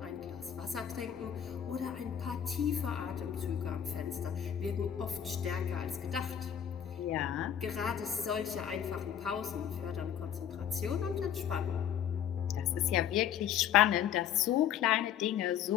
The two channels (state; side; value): quieter; right; 9.4 dB